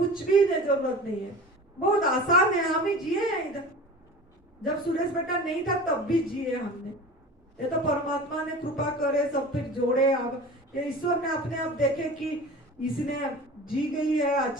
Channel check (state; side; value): normal; both; correlation 0.37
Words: भी जरूरत नहीं है, बहुत आसान है। हम ही जिए हैं इधर, जब सुरेश बेटा नहीं था तब भी जिए हमने। ये तो परमात्मा ने कृपा करे, सब फिर जोड़े। अब ये ईश्वर ने अपने आप देखे कि इसने जी गई है,